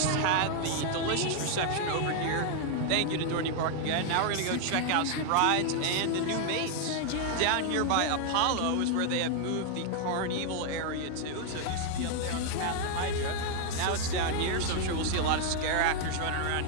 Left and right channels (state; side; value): different; both; correlation 0.00